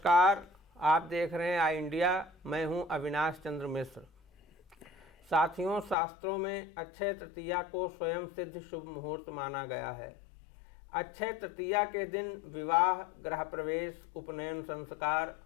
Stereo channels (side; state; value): right; drops out; at 6.0 s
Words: आप देख रहे हैं आई इंडिया। मैं हूं अविनाश चंद्र मिश्र। साथियों, शास्त्रों में अक्षय तृतीया को स्वयं सिद्ध शुभ मुहूर्त माना गया है। अक्षय तृतीया के दिन विवाह, गृह प्रवेश, उपनयन संस्कार